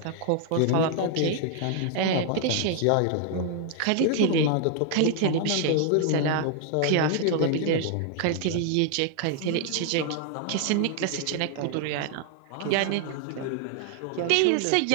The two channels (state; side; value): different; both; correlation 0.00